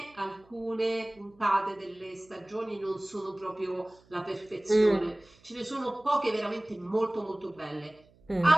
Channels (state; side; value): noise; right; hum, 29 dB below the sound